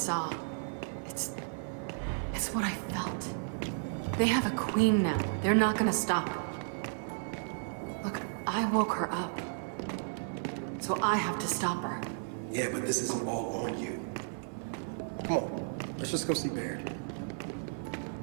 It's what I felt. They have a queen now. They're not gonna stop. Look, I woke her up. So I have to stop her. Yeah, but this isn't all on you. Come on, let's just go see Baird.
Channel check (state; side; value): silent; left; 55 dB below the other